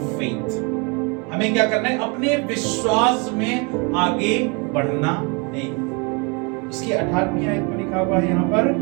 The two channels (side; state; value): left; quieter; 31.9 dB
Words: फेथ। हमें क्या करना है, अपने विश्वास में आगे बढ़ना है। उसकी 18वीं आयत में लिखा हुआ है, यहाँ पर